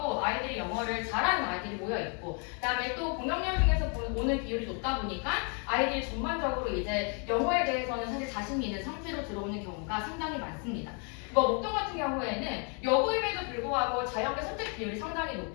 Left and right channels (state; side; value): quieter; right; 37.8 dB